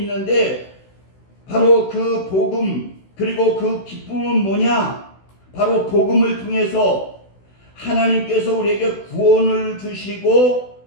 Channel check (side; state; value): right; late; 16 ms